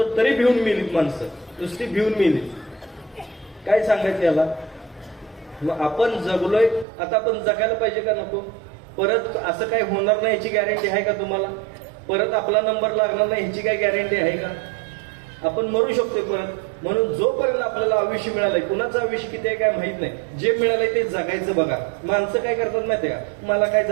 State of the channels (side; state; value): left; drops out; at 6.9 s